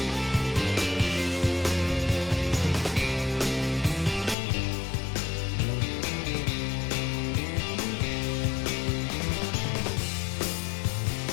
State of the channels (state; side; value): drops out; right; at 4.4 s